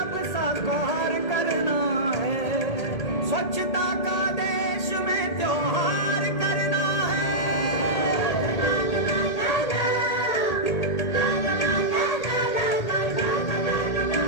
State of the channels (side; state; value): right; late; 1.8 ms